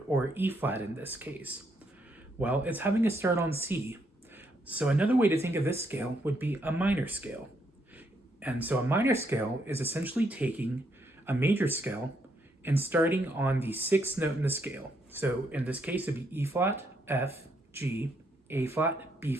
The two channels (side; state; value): both; normal; correlation 0.74